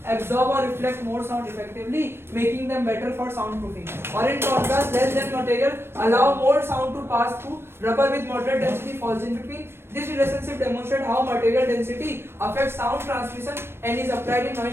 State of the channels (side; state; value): left; late; 0.12 ms